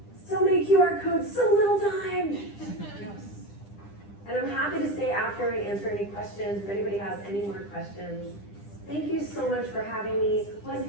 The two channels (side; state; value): right; late; 10 ms